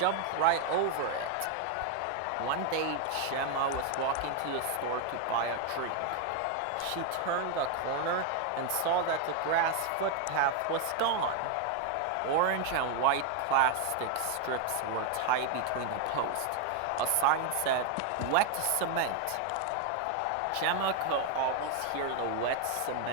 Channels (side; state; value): both; different; correlation 0.01